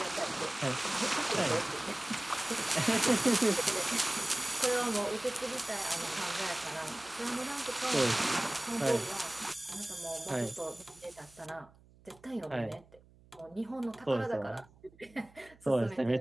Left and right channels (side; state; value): right; noise; hum, 27 dB below the sound